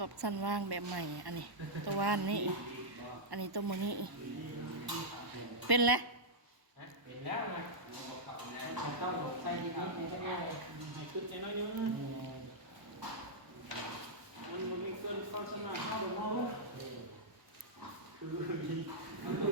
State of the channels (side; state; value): left; late; 1.1 ms